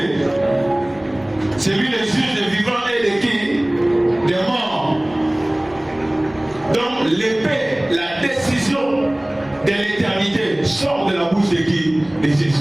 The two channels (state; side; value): noise; left; rumble, 27 dB below the sound